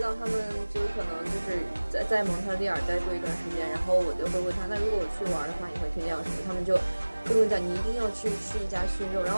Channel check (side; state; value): both; inverted; correlation -1.00